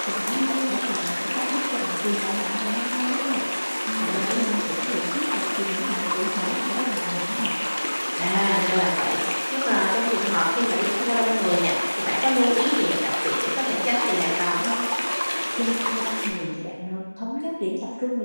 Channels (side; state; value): both; inverted; correlation -1.00